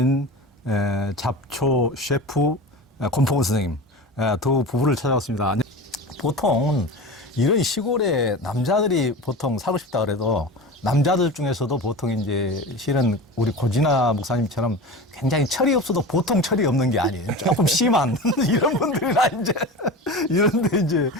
잡초 셰프 권풍원 선생님, 두 부부를 찾아왔습니다. 보통 이런 시골에 남자들이 보통 살고 싶다 그래도 남자들 중에서도 보통 이제 실은 우리 고진아 목사님처럼 굉장히 철이 없어도 보통 철이 없는 게 아니에요. 조금 심한 이런 분들이나 이제 이런데 이제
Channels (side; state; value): both; normal; correlation 0.30